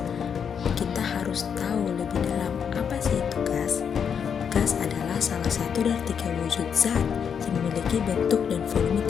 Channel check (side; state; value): right; quieter; 7.3 dB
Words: kita harus tahu lebih dalam apa sih itu gas. Gas adalah salah satu dari 3 wujud zat yang memiliki bentuk dan volume